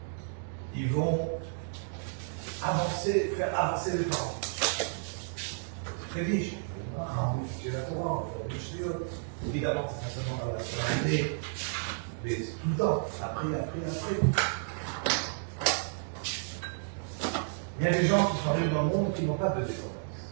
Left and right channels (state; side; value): silent; left; digital silence